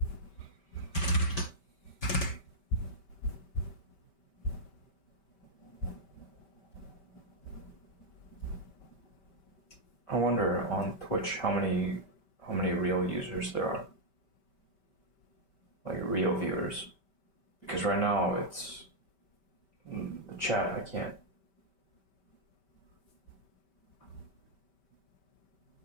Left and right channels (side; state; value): right; late; 5.2 ms